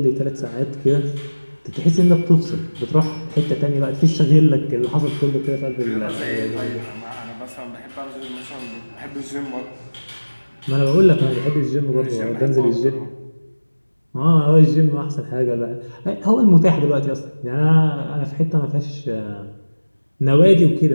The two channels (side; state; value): both; inverted; correlation -1.00